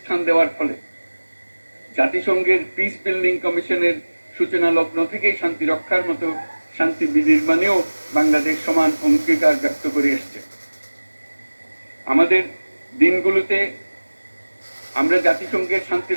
দেওয়ার ফলে। জাতিসংঘের পিস বিল্ডিং কমিশনের সূচনা লগ্ন থেকেই শান্তি রক্ষার মতো শান্তি বিনির্মাণেও বাংলাদেশ সমান অঙ্গীকার ব্যক্ত করে এসছে। আমাদের দিনগুলোতে আমরা জাতিসংঘের শান্তি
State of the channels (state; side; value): inverted; both; correlation -1.00